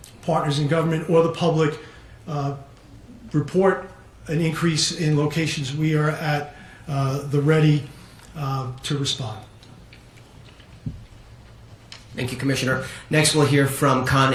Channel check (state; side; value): identical; both; correlation 1.00